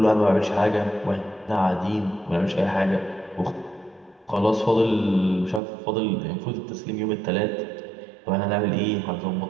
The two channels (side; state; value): left; drops out; at 5.6 s